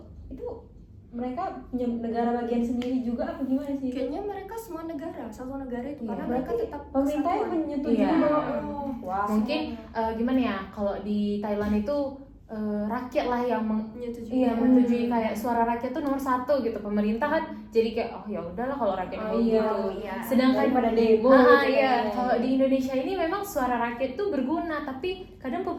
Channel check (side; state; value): both; identical; correlation 1.00